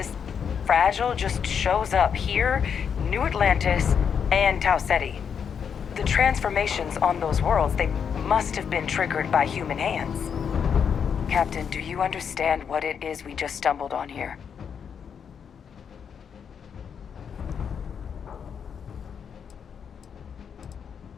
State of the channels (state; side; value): quieter; right; 7.2 dB